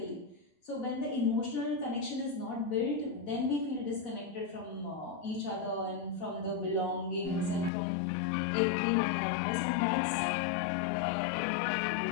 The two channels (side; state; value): right; drops out; at 7.7 s